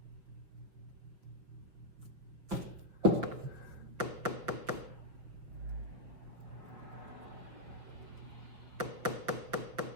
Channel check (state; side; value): late; left; 6.0 ms